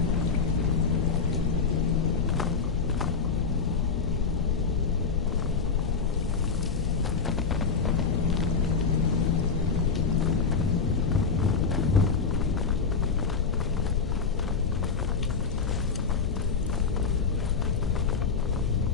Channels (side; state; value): right; quieter; 5.3 dB